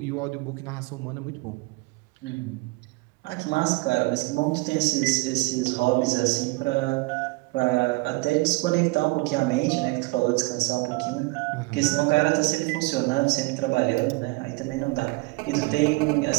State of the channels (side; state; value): left; quieter; 23.6 dB